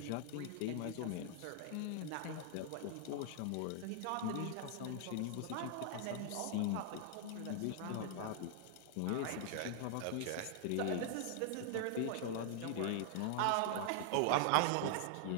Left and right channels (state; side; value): different; both; correlation -0.01